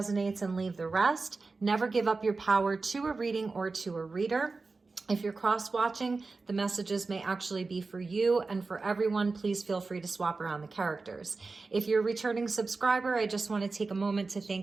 and leave the rest. Never give up your power to a reading or to a reader. If you're cross-watching, the messages may actually be for you and for everyone. Please feel free to swap around the characters. If you're a returning subscriber, I just want to take a moment to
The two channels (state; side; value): quieter; left; 3.9 dB